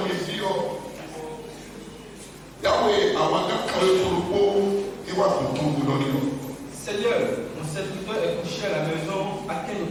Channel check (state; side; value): identical; both; correlation 1.00